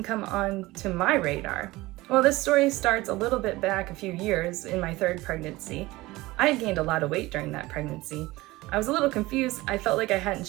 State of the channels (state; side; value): quieter; left; 19.6 dB